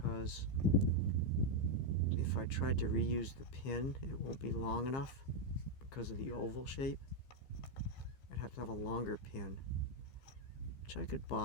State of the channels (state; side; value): late; right; 15 ms